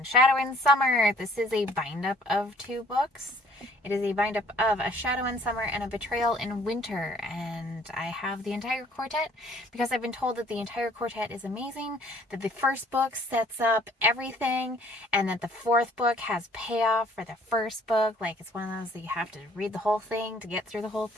Shadow in Summer. This is a bind-up of 2 books. It is a bind-up of A Shadow in Summer and A Betrayal in Winter. And I have the entire quartet because I've been told that the entire quartet is amazing, that the first book sets up everything, and that the 4th book has payoff for the first book. Like, it's one of those that you have to read the whole thing to get through the whole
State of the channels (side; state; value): both; normal; correlation 0.58